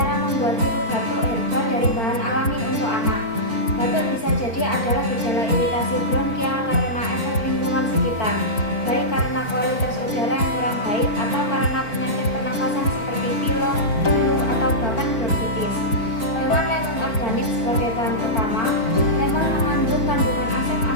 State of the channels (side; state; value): right; late; 4.5 ms